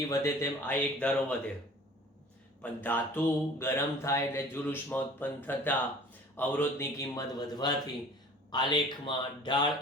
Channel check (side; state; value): both; normal; correlation 0.47